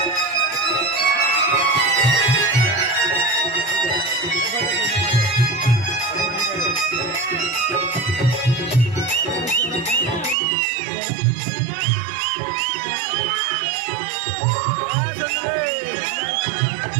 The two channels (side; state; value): left; drops out; at 10.4 s